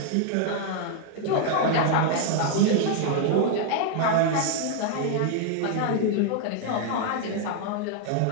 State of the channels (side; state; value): both; different; correlation 0.00